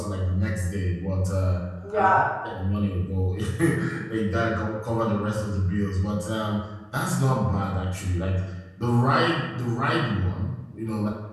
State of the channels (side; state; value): both; identical; correlation 1.00